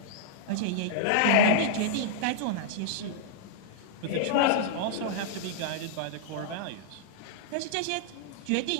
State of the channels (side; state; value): both; different; correlation -0.02